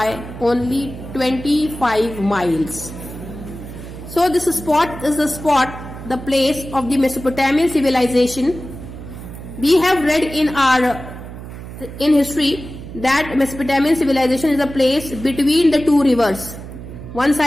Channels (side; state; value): right; noise; hum, 12 dB below the sound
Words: only 25 miles. So this spot is the place of the Mesopotamian civilization. We have read in history that Mesopotamian civilization is a place between the two rivers. One